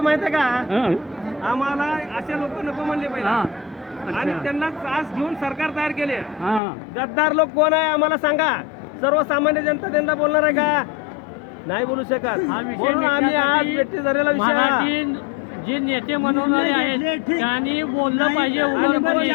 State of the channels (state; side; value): drops out; right; at 6.6 s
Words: माहितीये का? आम्हाला असे लोक नको म्हणले पाहिजे आणि त्यांना त्रास घेऊन सरकार तयार केले. गद्दार लोक कोण आहे आम्हाला सांगा. सर्वसामान्य जनता त्यांना बोलणार आहे का? नाही बोलू शकत. हा विषय म्हणून आम्ही आज भेटी झालेला विषय मराठी जे नेते म्हणवणारे आहेत त्यांनी बोललं पाहिजे,